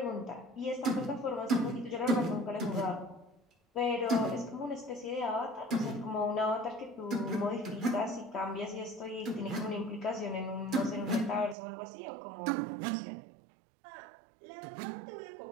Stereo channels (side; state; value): left; drops out; at 11.6 s